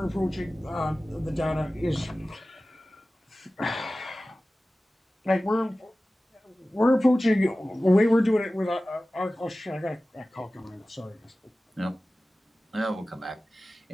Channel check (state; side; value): normal; both; correlation 0.96